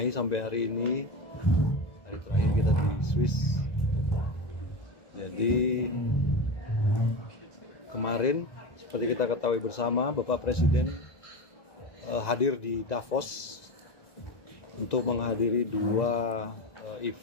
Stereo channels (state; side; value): late; right; 2.0 ms